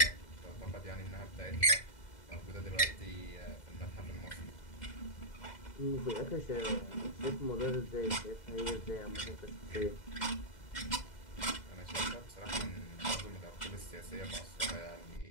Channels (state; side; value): late; right; 2.0 ms